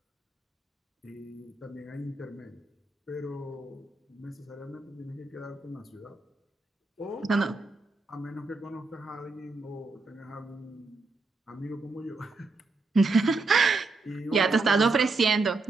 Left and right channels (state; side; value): quieter; left; 3.6 dB